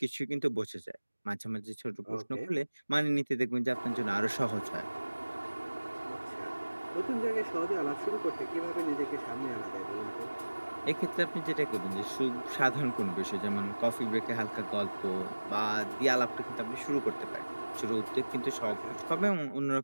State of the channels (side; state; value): both; inverted; correlation -1.00